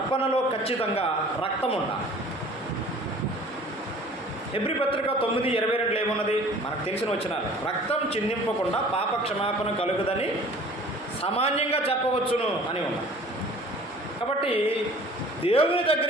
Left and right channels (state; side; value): normal; both; correlation 0.48